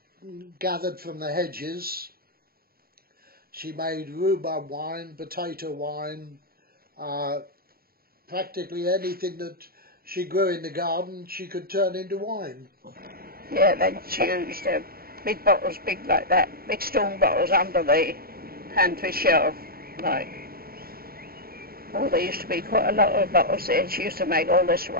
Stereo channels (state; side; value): late; left; 0.44 ms